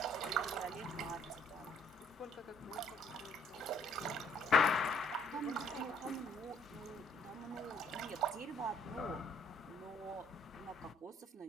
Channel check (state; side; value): normal; both; correlation 0.64